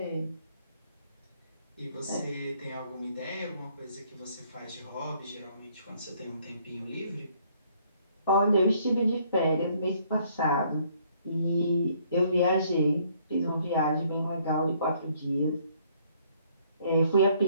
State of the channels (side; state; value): both; inverted; correlation -0.65